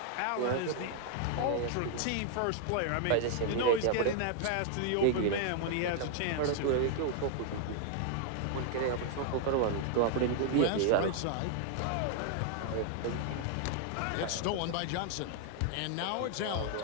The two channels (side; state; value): both; different; correlation 0.00